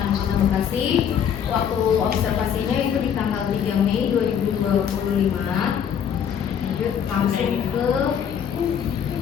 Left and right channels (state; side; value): quieter; right; 8.3 dB